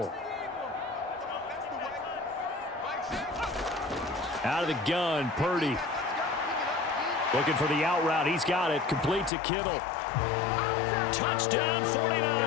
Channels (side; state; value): right; drops out; at 9.3 s